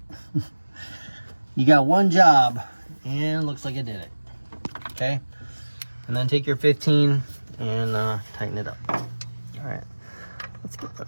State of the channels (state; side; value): inverted; both; correlation -1.00